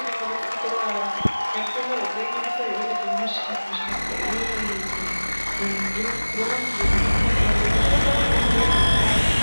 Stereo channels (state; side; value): inverted; both; correlation -1.00